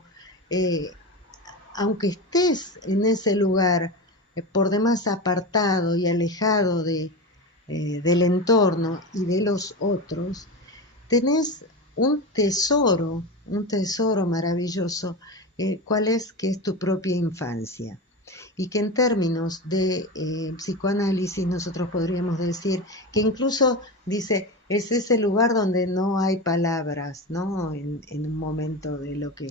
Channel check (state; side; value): normal; both; correlation 0.23